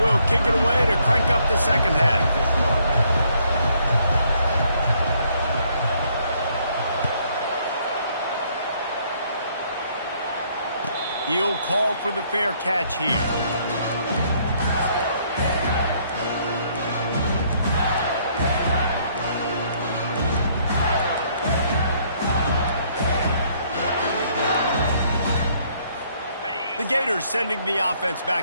kick it away to crank up the 2nd half. He'll call for the fair catch here. Gators sending the offense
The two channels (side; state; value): both; inverted; correlation -0.67